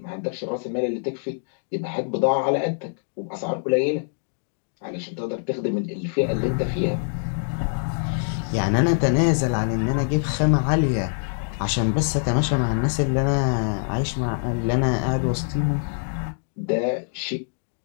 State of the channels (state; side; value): silent; right; digital silence